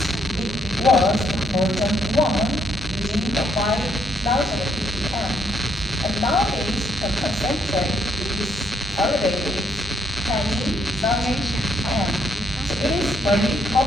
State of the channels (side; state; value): both; normal; correlation 0.72